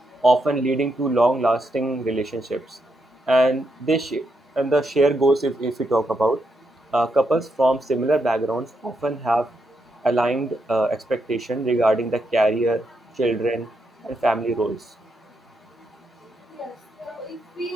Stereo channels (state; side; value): normal; both; correlation 0.81